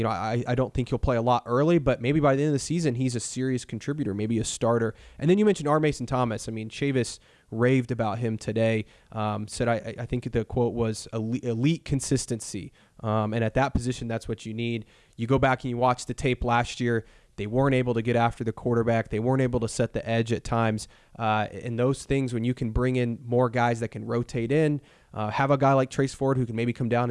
don't think he'll play a lot early, but maybe by the end of the season, he's a serious contributor, maybe a starter. And then you mentioned R. Mason Thomas. I mean, Chavis raved about him today. Said, I think the quote was elite consistency. And at that position, that's what you need. You go back and you watch the tape last year. They weren't able to get after the quarterback. They weren't able to set the edge at times. And those things, when you can bring in more guys that can rotate in, have a guy like Trace Ford who can maybe come down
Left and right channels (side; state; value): both; identical; correlation 1.00